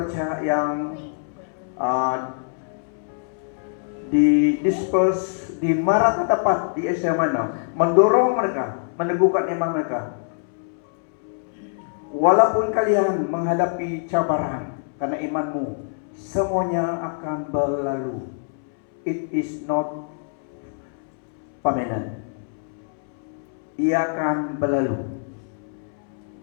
yang di disperse di Marat tepat di Asia Minor, mendorong mereka, meneguhkan iman mereka. Walaupun kalian menghadapi cabaran karena imanmu, semuanya akan berlalu. It is not permanent. Ia akan berlalu.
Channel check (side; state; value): right; silent; 63 dB below the other